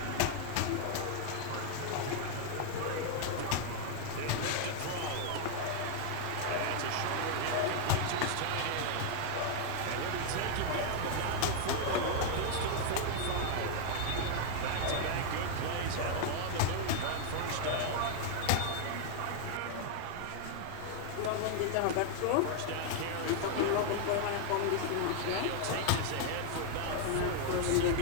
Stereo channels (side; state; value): both; different; correlation 0.00